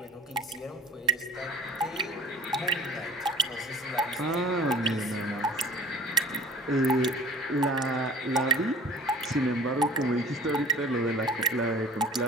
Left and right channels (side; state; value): both; normal; correlation 0.44